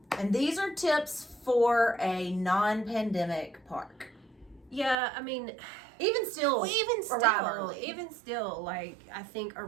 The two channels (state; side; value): drops out; left; at 5.0 s